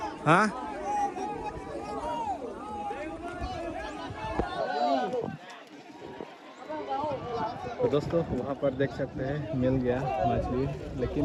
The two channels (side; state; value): both; identical; correlation 1.00